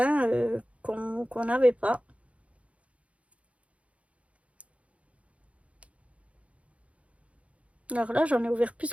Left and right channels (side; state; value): left; late; 0.064 ms